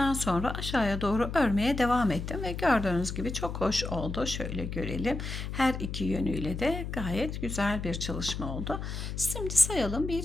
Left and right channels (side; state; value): left; noise; hum, 6 dB below the sound